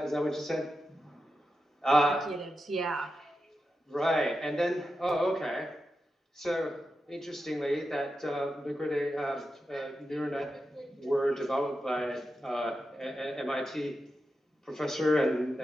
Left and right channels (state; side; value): normal; both; correlation 0.90